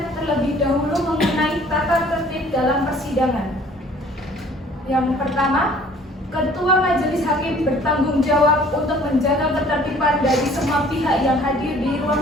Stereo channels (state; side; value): normal; both; correlation 0.54